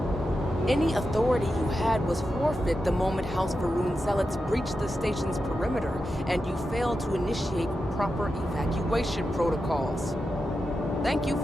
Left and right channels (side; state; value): both; normal; correlation 0.89